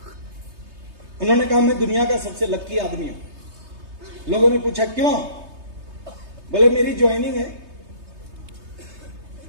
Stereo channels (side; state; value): left; late; 3.3 ms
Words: उन्होंने कहा मैं दुनिया का सबसे लक्की आदमी हूं। लोगों ने पूछा क्यों? बोले मेरी ज्वाइनिंग है,